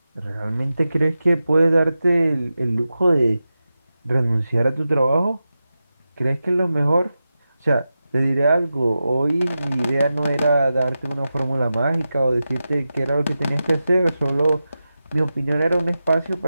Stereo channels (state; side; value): inverted; both; correlation -0.92